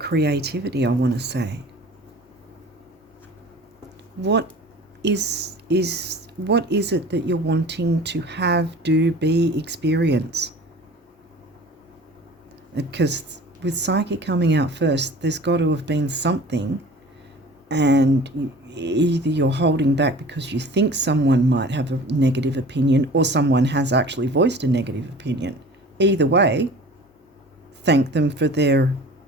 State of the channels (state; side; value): normal; both; correlation 0.43